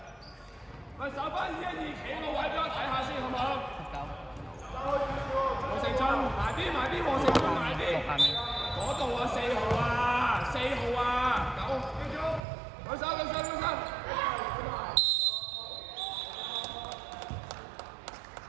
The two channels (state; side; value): drops out; left; at 12.5 s